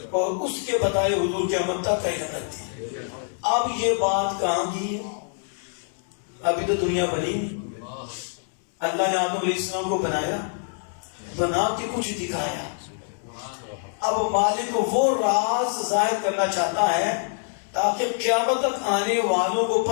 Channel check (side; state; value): right; silent; digital silence